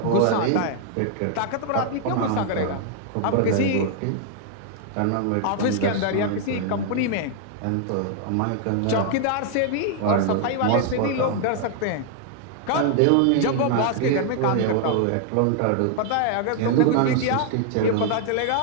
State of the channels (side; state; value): both; different; correlation 0.00